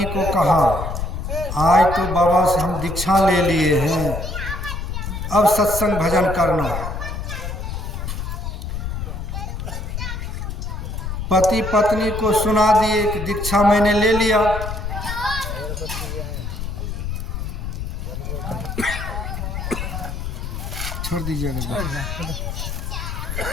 को कहा, आज तो बाबा से हम दीक्षा ले लिए हैं, अब सत्संग भजन करना। पति पत्नी को सुना दिए कि दीक्षा मैंने ले लिया। छोड़ दीजिएगा,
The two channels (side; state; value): left; noise; rumble, 5 dB below the sound